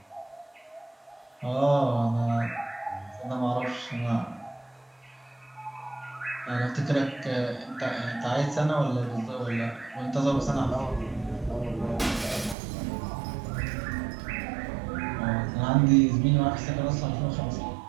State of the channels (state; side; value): drops out; left; at 12.6 s